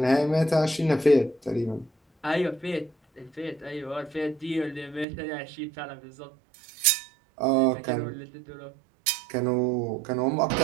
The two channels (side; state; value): left; drops out; at 5.1 s